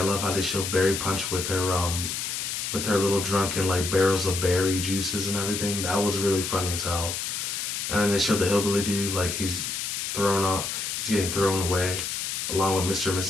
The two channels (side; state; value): left; noise; hiss, 3 dB below the sound